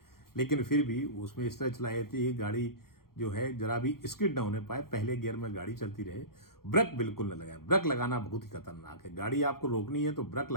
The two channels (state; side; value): late; right; 0.93 ms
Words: लेकिन फिर भी उसमें इस तरह चलाई थी गाड़ी जो है जरा भी स्किड ना होने पाए, पहले गियर में गाड़ी चलती रहे। ब्रेक बिल्कुल न लगाए, ब्रेक लगाना बहुत ही खतरनाक है। गाड़ी आपको रोकनी है तो ब्रेक